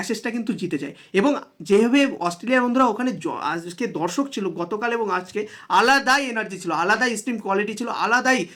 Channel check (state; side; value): identical; both; correlation 1.00